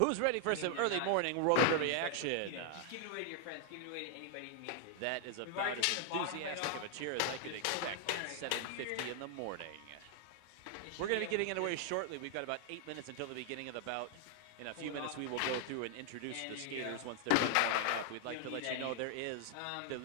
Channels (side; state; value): both; different; correlation 0.00